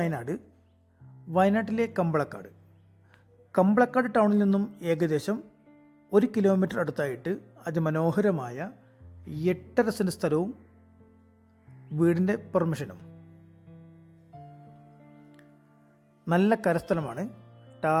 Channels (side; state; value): both; identical; correlation 1.00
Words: വയനാട്ടിലെ കമ്പളക്കാട് ടൗണിൽ നിന്നും ഏകദേശം 1 കിലോമീറ്റർ അടുത്തായിട്ട് അതിമനോഹരമായ 8.5 സെൻറ് സ്ഥലവും വീടിൻ്റെ പെർമിഷനും. നല്ല കരസ്ഥലമാണ്,